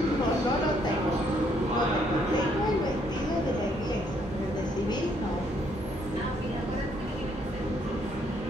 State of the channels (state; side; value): normal; both; correlation 0.69